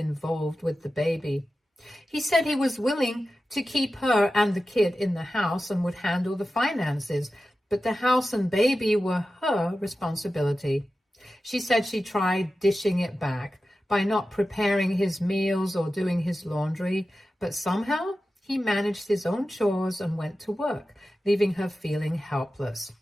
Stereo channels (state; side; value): normal; both; correlation 0.93